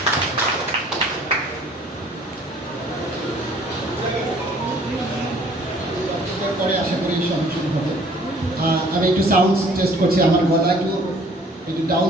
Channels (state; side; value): normal; both; correlation 0.56